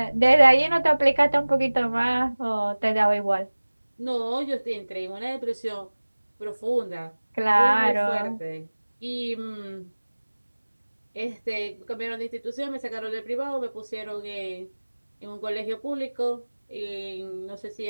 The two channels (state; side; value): inverted; both; correlation -1.00